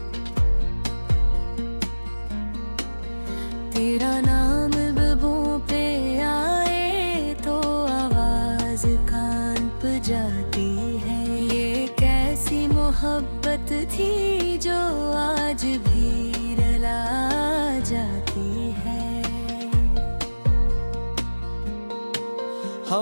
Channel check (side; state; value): both; inverted; correlation -1.00